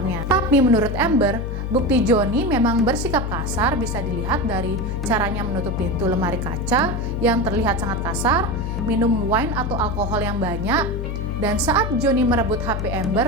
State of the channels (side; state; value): left; noise; hum, 3 dB below the sound